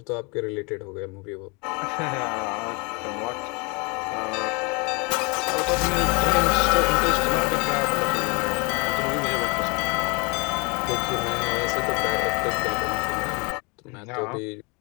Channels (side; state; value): right; quieter; 30.4 dB